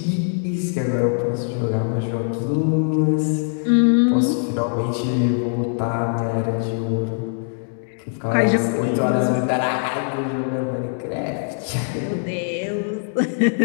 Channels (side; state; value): right; silent; digital silence